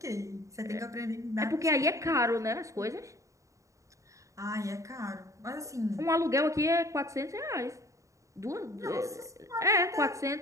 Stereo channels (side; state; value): left; late; 0.15 ms